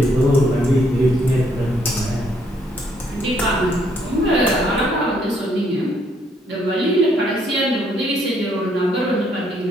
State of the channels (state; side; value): normal; both; correlation 0.70